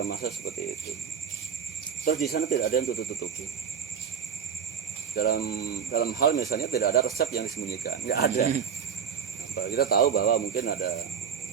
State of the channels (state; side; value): quieter; left; 7.4 dB